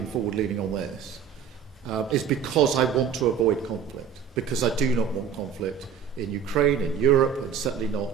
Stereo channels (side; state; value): left; quieter; 7.4 dB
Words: forward-leaning on this is because I want to avoid conflict, because I do not want conflict in Ukraine, in Europe, and certainly